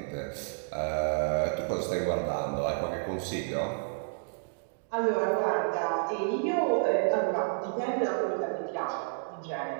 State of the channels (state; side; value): silent; left; digital silence